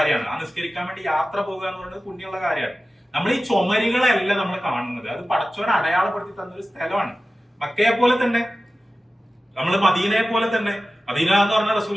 ആ നിസ്കരിക്കാൻ വേണ്ടി യാത്ര പോകുക എന്ന് പറയുന്നത് പുണ്യമുള്ള കാര്യമാണ്. നമ്മൾ ഈ ചുമരുകളല്ല നമ്മൾ കാണുന്നത്, അത് പടച്ചവൻ അടയാളപ്പെടുത്തി തന്നൊരു സ്ഥലമാണ്. മക്കയെ പോലെ തന്നെ, നമ്മൾ മദീനയെ പോലെ തന്നെ. മദീന എന്ന് പറഞ്ഞാൽ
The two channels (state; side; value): normal; both; correlation 0.95